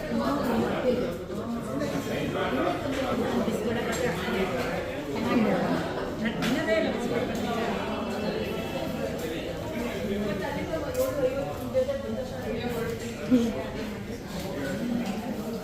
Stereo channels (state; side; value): identical; both; correlation 1.00